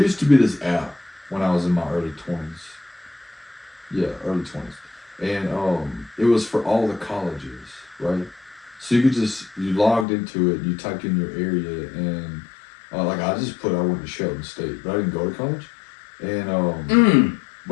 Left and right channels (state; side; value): drops out; right; at 10.1 s